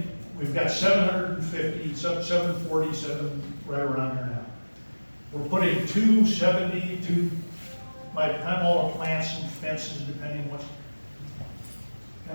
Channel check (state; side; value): inverted; both; correlation -1.00